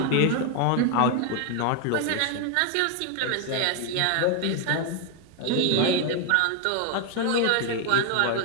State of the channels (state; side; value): different; both; correlation 0.01